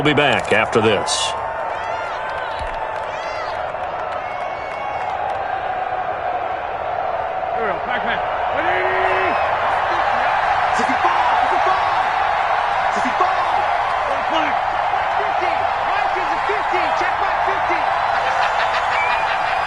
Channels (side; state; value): both; identical; correlation 1.00